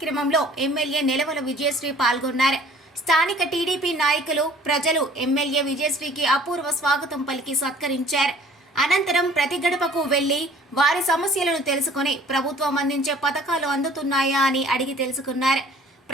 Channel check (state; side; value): normal; both; correlation 0.52